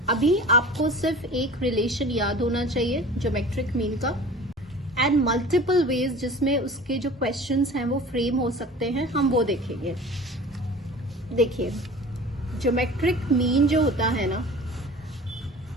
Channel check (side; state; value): both; normal; correlation 0.41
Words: अभी आपको सिर्फ एक रिलेशन याद होना चाहिए ज्योमेट्रिक मीन का एंड मल्टीपल वेज जिसमें उसके जो क्वेश्चंस हैं वो फ्रेम हो सकते हैं, हम वो देखेंगे. देखिए ज्योमेट्रिक मीन जो होता है ना,